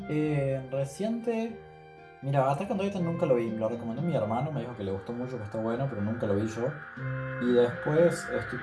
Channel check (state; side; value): identical; both; correlation 1.00